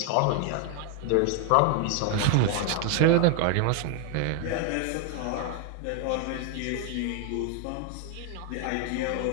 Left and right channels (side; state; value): both; different; correlation 0.01